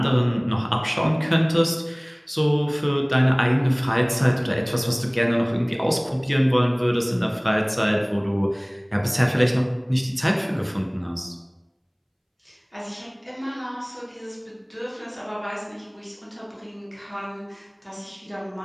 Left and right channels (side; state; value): both; identical; correlation 1.00